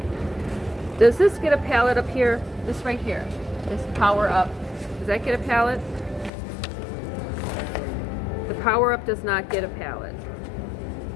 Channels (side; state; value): right; drops out; at 6.3 s